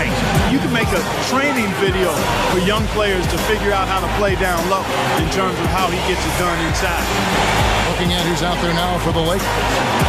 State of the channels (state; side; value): identical; both; correlation 1.00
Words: You can make a training video for young players to figure out how to play down low in terms of how he gets it done inside. Looking at who's out there now for the Lakers.